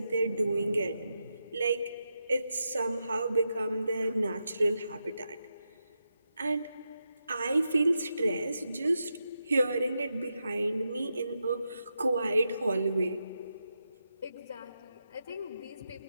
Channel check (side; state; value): both; inverted; correlation -0.86